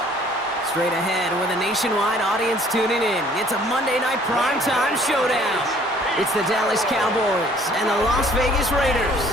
Straight ahead, with a nationwide audience tuning in, it's a Monday night primetime showdown. It's the Dallas Cowboys and the Las Vegas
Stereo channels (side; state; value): both; normal; correlation 0.57